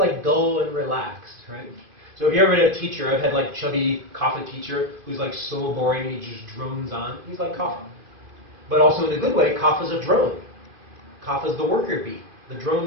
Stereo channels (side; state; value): left; late; 2.5 ms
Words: dull and relaxed, right? So if you ever had a teacher, I've had like chubby Kapha teacher who's like so boring and he just drones on. He's like Kapha. But also in a good way, Kapha's a drone. Kapha's the worker bee, the